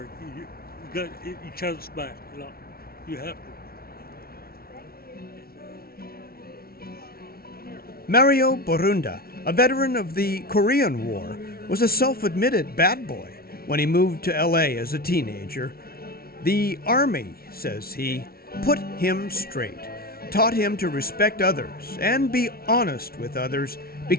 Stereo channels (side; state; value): right; late; 0.44 ms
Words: You got each other's back. You have to. Mario Borunda, a veteran of the Korean War, was a self-admitted bad boy when he moved to LA as a teenager. The Army, says he, put him straight, taught him to respect others and be honest with others,